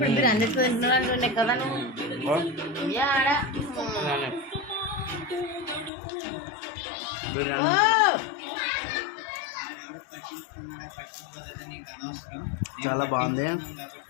బిర్యానీ చాలా బాగుంది.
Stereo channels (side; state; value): right; drops out; at 5.9 s